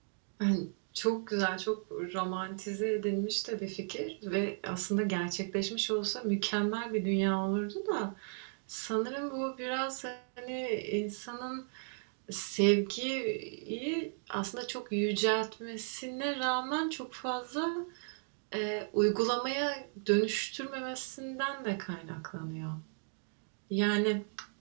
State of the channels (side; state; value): left; silent; 54 dB below the other